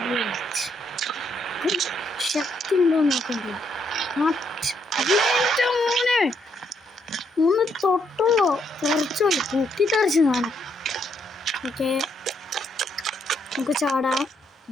ശക്തി ഉണ്ടോ നോക്കണ്ടേ? മോനെ ഒന്ന് തൊട്ടുള്ളൂ, തെറിച്ചോളൂ, പൊട്ടിത്തെറിച്ച് കാണാം. ഓക്കെ, നമുക്ക് ചാടാം.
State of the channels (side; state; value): both; normal; correlation 0.74